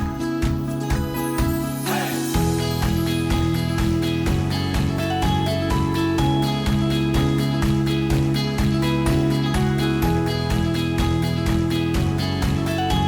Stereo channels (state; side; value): identical; both; correlation 1.00